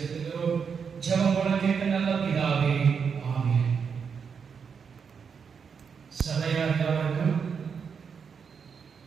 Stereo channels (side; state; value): left; quieter; 6.3 dB